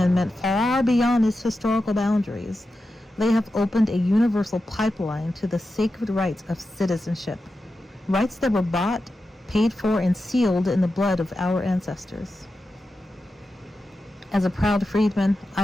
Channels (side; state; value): both; normal; correlation 0.91